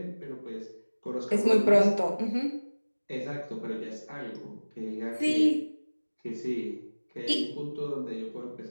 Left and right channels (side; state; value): both; inverted; correlation -1.00